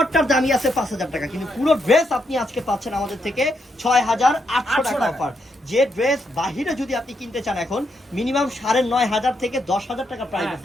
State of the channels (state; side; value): normal; both; correlation 0.79